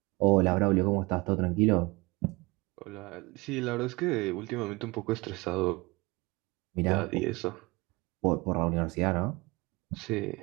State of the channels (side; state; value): left; quieter; 24.3 dB